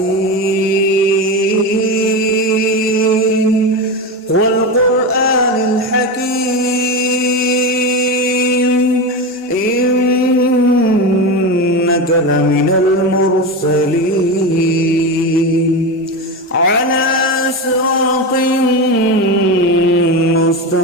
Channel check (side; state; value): both; normal; correlation 0.19